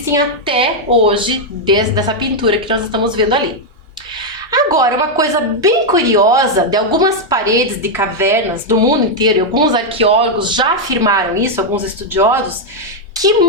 até hoje dessa pintura que nós estamos vendo ali. Agora, uma coisa bem curiosa de algumas paredes de cavernas do mundo inteiro, e alguns arqueólogos já afirmaram isso, alguns estudiosos, que em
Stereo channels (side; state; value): both; normal; correlation 0.00